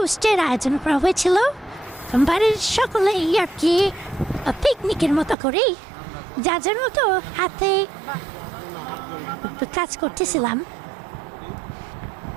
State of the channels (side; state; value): left; drops out; at 5.4 s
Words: আয়োজন করা হয়েছিল। বাড়ির সকলে আর কি পিকনিকের মতো করে যার মতো হাতে কাজ করতেছিলাম।